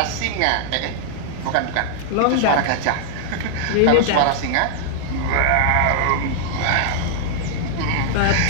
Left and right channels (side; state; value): both; different; correlation -0.01